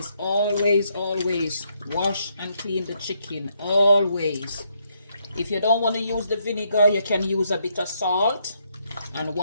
always wash and clean the chicken, always. If you don't want to use the vinegar, you can use a bit of salt and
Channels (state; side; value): inverted; both; correlation -0.75